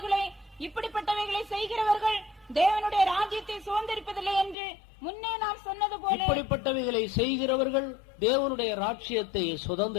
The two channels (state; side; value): drops out; right; at 4.5 s